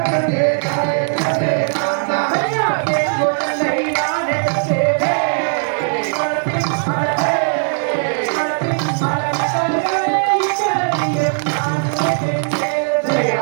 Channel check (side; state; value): left; silent; 67 dB below the other